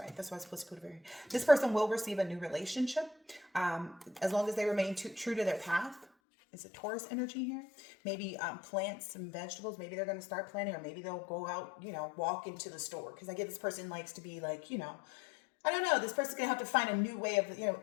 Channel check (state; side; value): drops out; right; at 6.1 s